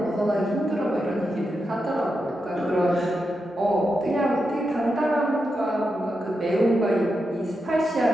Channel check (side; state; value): both; normal; correlation 0.87